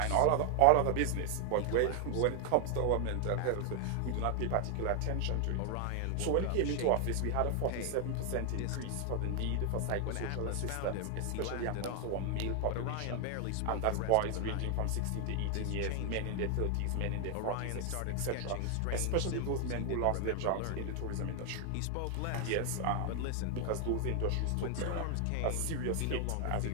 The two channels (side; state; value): both; different; correlation 0.00